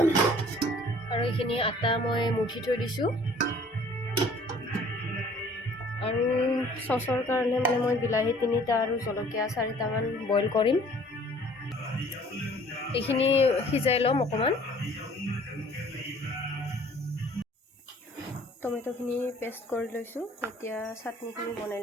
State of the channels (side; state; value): both; normal; correlation 0.54